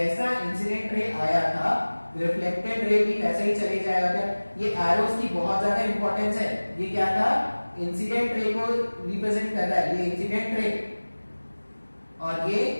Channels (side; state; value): both; inverted; correlation -1.00